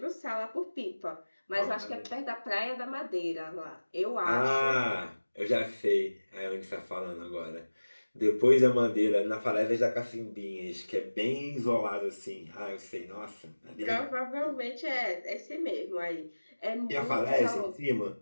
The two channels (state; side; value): inverted; both; correlation -1.00